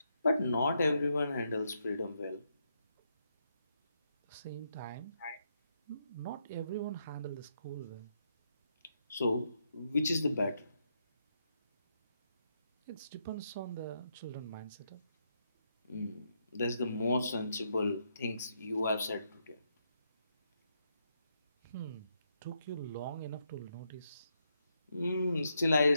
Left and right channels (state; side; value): inverted; both; correlation -0.80